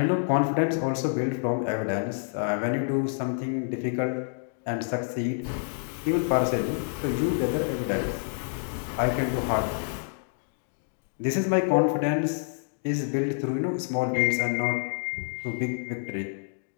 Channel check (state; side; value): silent; right; digital silence